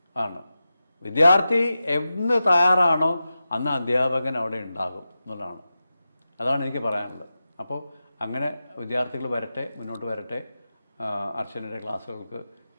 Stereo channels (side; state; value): both; inverted; correlation -0.93